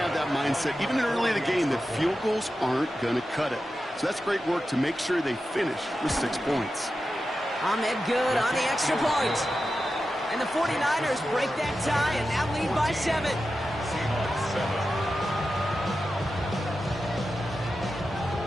that mindset, even early in the game, that field goals aren't going to cut it. So that's great work to make sure they finish with 6 points. Ahmed good on the extra point. And the 49ers break that tie and now lead by 7.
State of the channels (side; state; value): both; normal; correlation 0.91